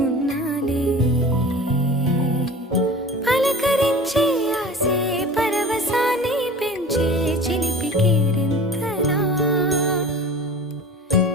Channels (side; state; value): both; normal; correlation 0.39